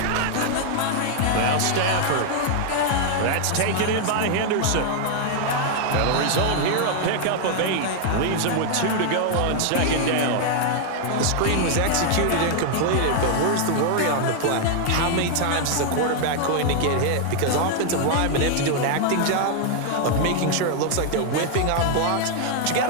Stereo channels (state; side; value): different; both; correlation 0.00